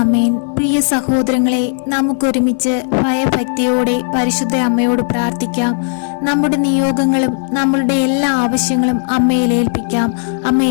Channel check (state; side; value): silent; right; digital silence